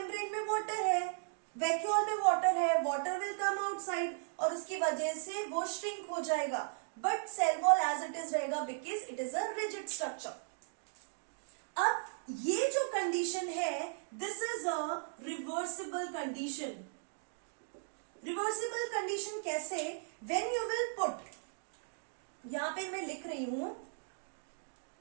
में water है, vacuole में water है, water will come outside और उसकी वजह से वो shrink हो जाएगा। But cell wall as it is रहेगा because it is a rigid structure. अब ये जो कंडीशन है, this is a reversible condition. Reversible condition कैसे? व्हेन यू विल पुट, यहां पे मैं लिख रही हूं,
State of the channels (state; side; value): silent; left; digital silence